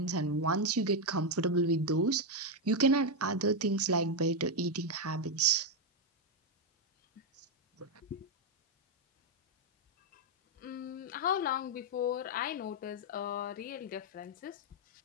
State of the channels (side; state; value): both; normal; correlation 0.03